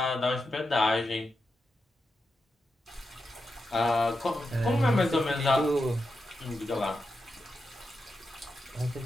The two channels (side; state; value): both; normal; correlation 0.88